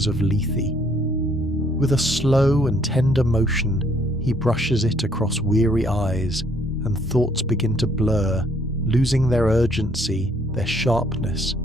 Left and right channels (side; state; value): both; normal; correlation 0.65